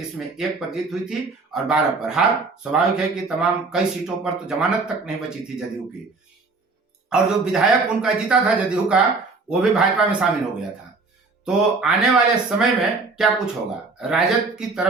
1 पर जीत हुई थी और 12 पर हार। स्वाभाविक है कि तमाम कई सीटों पर तो जमानत तक नहीं बची थी जदयू की, और जो विधायक उनका जीता था जदयू का, वो भी भाजपा में शामिल हो गया था। तो आने वाले समय में क्या कुछ होगा? राजद की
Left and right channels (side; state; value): left; quieter; 4.0 dB